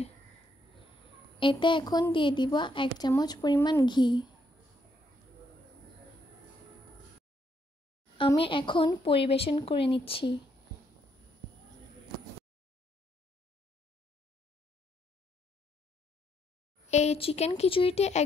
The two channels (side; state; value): both; normal; correlation 0.74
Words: এতে এখন দিয়ে দিব 1 চামচ পরিমাণ ঘি। আমি এখন পরিবেশন করে নিচ্ছি। এই চিকেন খিচুড়িটি